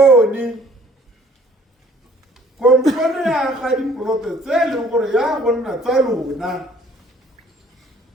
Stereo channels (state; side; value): normal; both; correlation 0.57